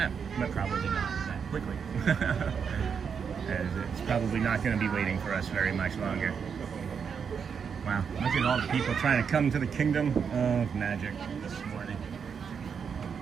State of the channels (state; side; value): quieter; left; 6.6 dB